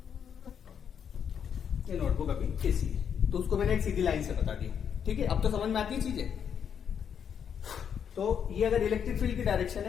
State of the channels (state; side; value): quieter; right; 7.9 dB